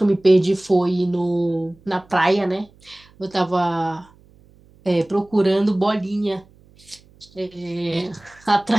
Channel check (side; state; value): right; noise; hum, 28 dB below the sound